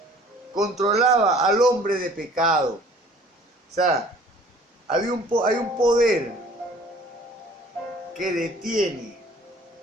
controlaba al hombre de pecado. O sea, hay un poder que detiene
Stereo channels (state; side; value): normal; both; correlation 0.52